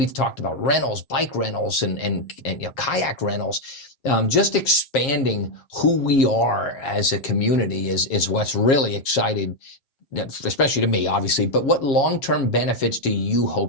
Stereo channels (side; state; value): right; late; 7.4 ms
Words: talked about rentals, bike rentals, and kayak rentals. Just expanding who we are as a community is what's really exciting, especially to me, obviously. But what long-term benefits do you